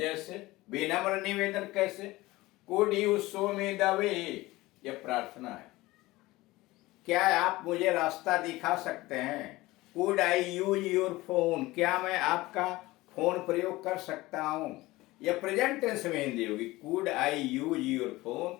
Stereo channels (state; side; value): quieter; right; 19.4 dB